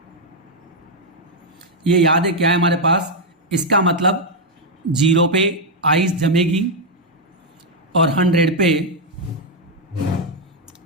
ये याद है क्या है हमारे पास, इसका मतलब 0 पे आइस जमेगी और 100 पे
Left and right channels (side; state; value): both; normal; correlation 0.00